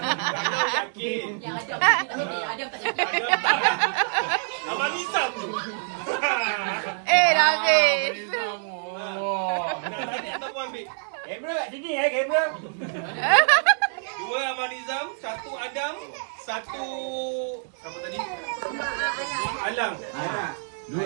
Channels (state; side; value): silent; left; digital silence